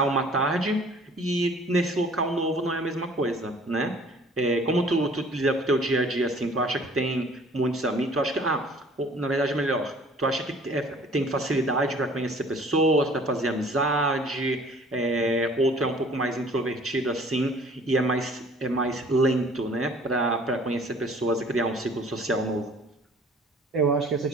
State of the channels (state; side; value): normal; both; correlation 0.52